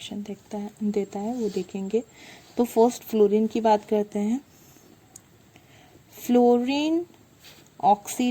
देता है वो देखेंगे। तो फर्स्ट फ्लोरीन की बात करते हैं। Fluorine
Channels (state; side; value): identical; both; correlation 1.00